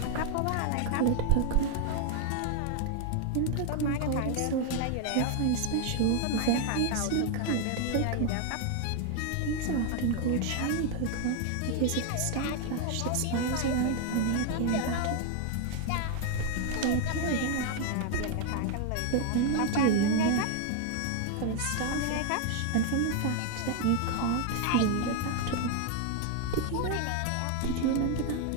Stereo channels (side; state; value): both; different; correlation 0.01